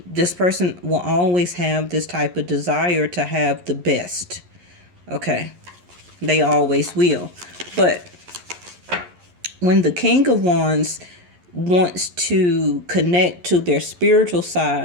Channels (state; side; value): late; left; 11 ms